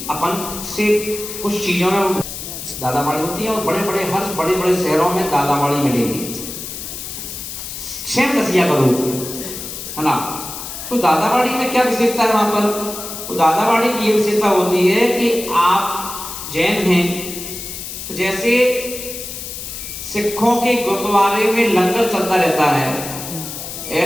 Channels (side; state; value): left; noise; hiss, 8 dB below the sound